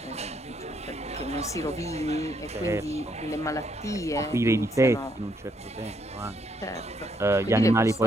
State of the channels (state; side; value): normal; both; correlation 0.73